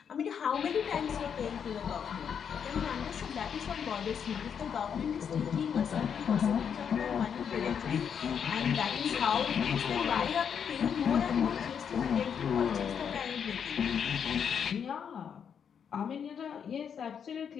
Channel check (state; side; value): quieter; right; 7.5 dB